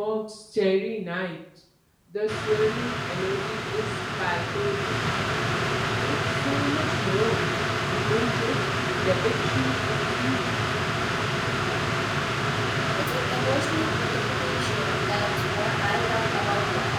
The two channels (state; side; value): identical; both; correlation 1.00